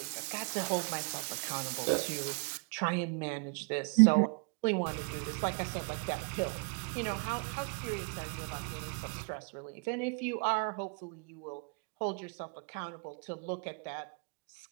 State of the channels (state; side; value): quieter; left; 36.3 dB